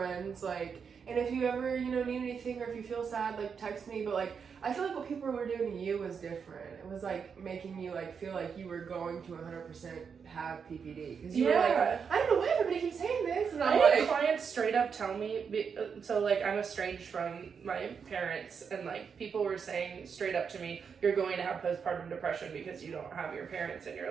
like, and if you ever, need anything, or if you feel sad, like, text me, but, like, I feel like what people were doing to you was different. It was, like, making you, like, feel like you were going to 100% have PPD. Because you were like, I don't know why everybody keeps saying this. And I had clients straight up tell me, so, like, I'm estranged from my parents, and, like, people were saying straight up to me, you're going to have postpartum depression because you don't have your parents in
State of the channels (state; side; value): quieter; left; 6.4 dB